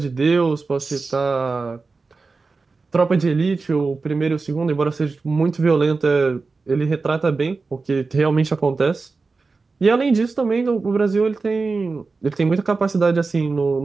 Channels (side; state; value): left; quieter; 4.1 dB